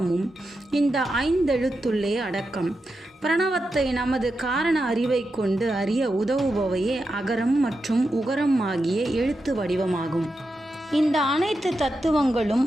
இந்த 5 எழுத்துள்ளே அடக்கம். பிரணவத்தை நமது காரண அறிவை கொண்டு அறிய உதவுபவையே அகரம் மற்றும் உகரம் ஆகிய எழுத்து வடிவமாகும். இந்த அனைத்து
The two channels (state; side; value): normal; both; correlation 0.88